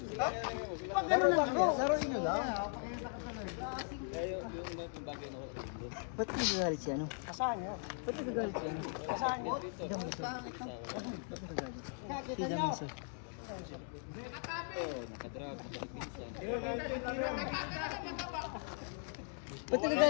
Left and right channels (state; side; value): silent; right; 52 dB below the other